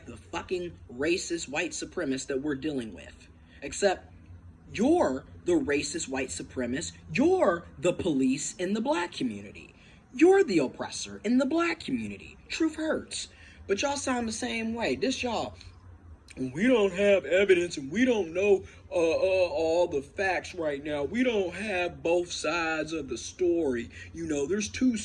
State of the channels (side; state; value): both; identical; correlation 1.00